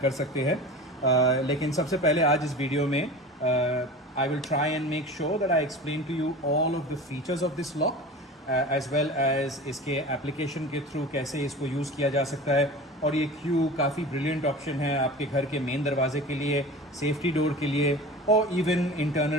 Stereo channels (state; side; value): normal; both; correlation 0.35